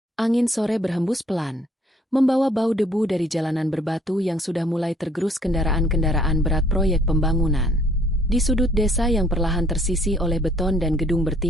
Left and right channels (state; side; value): normal; both; correlation 0.61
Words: Angin sore berhembus pelan, membawa bau debu dari jalanan berbatu yang sudah mulai tergerus kendaraan-kendaraan berat proyek pembangunan. Di sudut desa yang perlahan tersisi oleh beton dan gedung